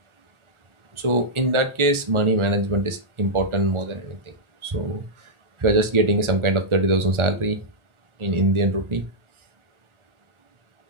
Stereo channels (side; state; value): left; late; 1.4 ms